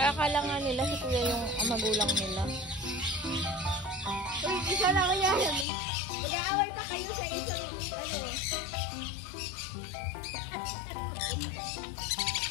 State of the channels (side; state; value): right; drops out; at 5.7 s